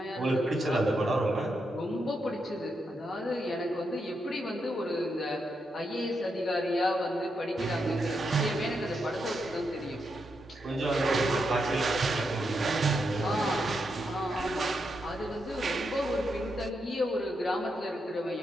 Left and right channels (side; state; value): both; normal; correlation 0.83